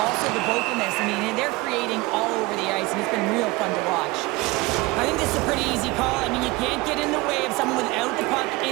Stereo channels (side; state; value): left; quieter; 22.0 dB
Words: also the vocalness. I mean, they're creating all over the ice, and it's been real fun to watch. I think this is a pretty easy call. I mean, you can't get in the way of someone without the puck